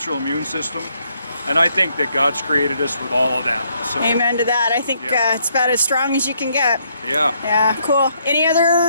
immune system, and I think that God's created us with all of that. So, Amen to that. I think Yeah. it's about as strong as you can get. yeah. Yeah, cool. Any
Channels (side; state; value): both; inverted; correlation -0.72